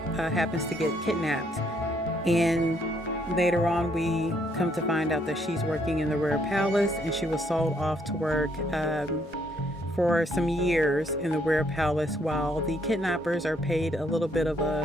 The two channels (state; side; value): normal; both; correlation 0.70